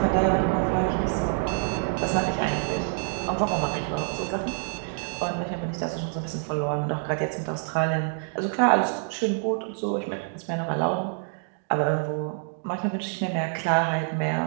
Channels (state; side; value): silent; left; 60 dB below the other